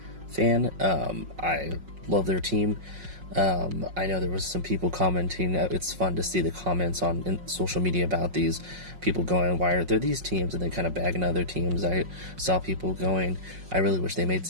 fan. I love their team. I know there was some people commenting. It's fun to see the comments on social media about these people going, why are there these teams? And they kind of bagging other teams. I saw people going, I really wish they made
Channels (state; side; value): late; left; 5.5 ms